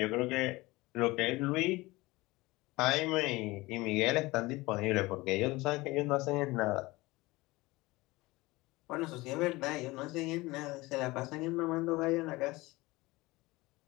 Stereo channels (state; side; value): quieter; right; 21.1 dB